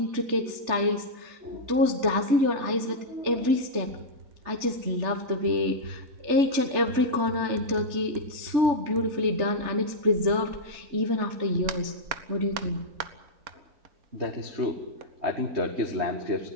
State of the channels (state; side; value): late; left; 3.4 ms